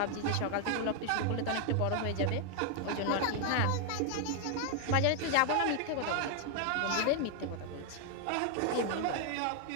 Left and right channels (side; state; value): both; different; correlation 0.00